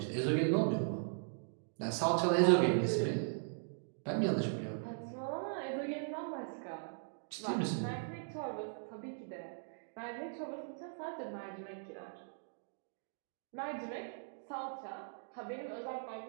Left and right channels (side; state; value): left; silent; digital silence